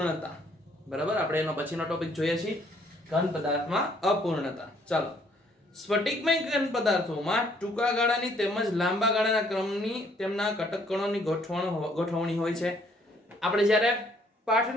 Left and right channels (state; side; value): normal; both; correlation 0.65